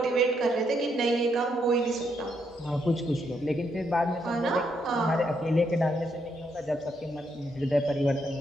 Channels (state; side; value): normal; both; correlation 0.77